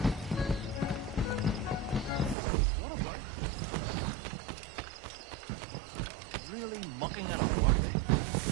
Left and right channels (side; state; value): left; drops out; at 2.4 s